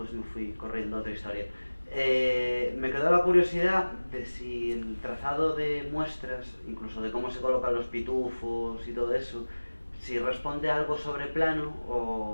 me fui corriendo a otra historia. Me quedó la curiosidad de si el trazado de muestras, incluso de cómo se colocan los pitufos y todo eso, si responde a algo sobre plano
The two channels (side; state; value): both; inverted; correlation -1.00